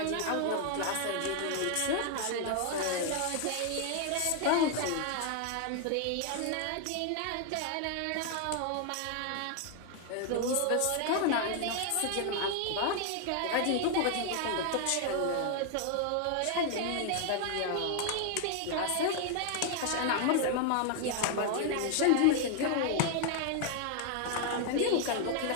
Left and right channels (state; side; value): different; both; correlation 0.00